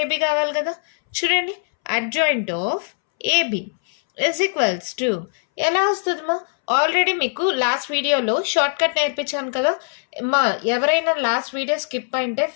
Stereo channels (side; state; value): right; silent; 65 dB below the other